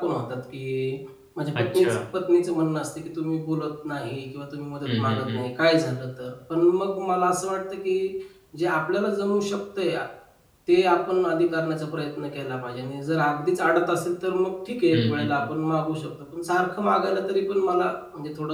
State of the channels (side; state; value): both; identical; correlation 1.00